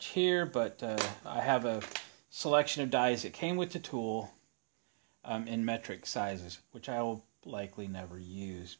here, but I have a selection of dies that came with the tool in metric sizes, which I will likely never use.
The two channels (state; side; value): silent; left; digital silence